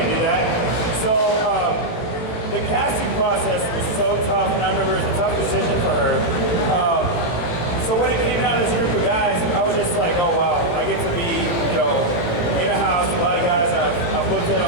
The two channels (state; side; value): late; right; 18 ms